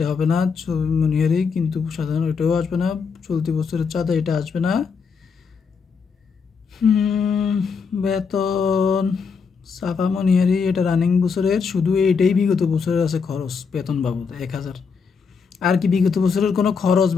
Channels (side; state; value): right; quieter; 5.7 dB